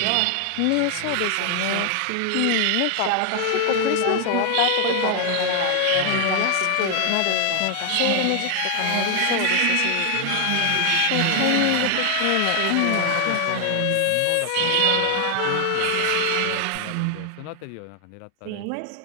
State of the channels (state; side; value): different; both; correlation 0.00